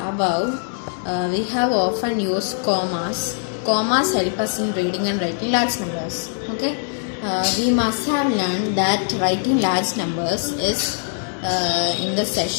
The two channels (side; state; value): right; silent; digital silence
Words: we have often used commas. Commas help us in reading and writing large numbers. Okay, we must have learned that writing large numbers is in the